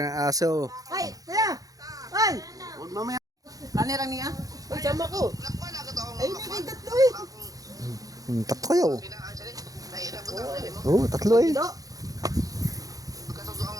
ang aso. Ay, kuya! Ay! Huwag mamaya. Kanirang niya? Uy, sama ko. Ay, may tatlo eh. Tatlo kayo. Oo, tatlo eh.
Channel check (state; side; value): late; left; 0.17 ms